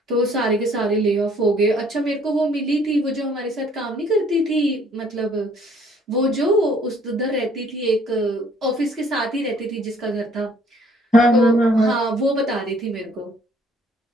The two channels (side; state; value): both; normal; correlation 0.60